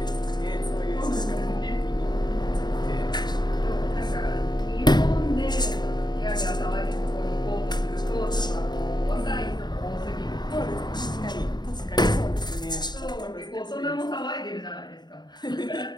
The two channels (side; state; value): right; late; 0.21 ms